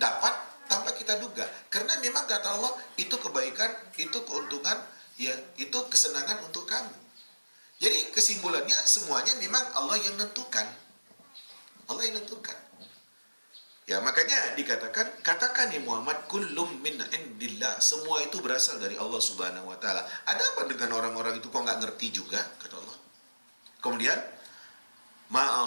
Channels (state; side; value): inverted; both; correlation -1.00